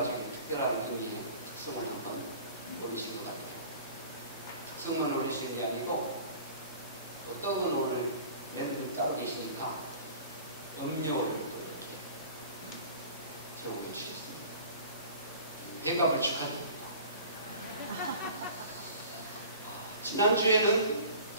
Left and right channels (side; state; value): both; inverted; correlation -0.43